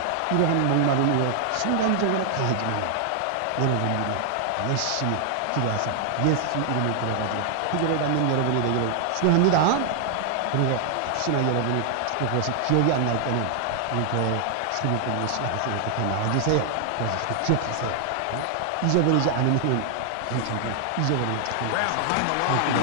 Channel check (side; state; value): both; different; correlation 0.00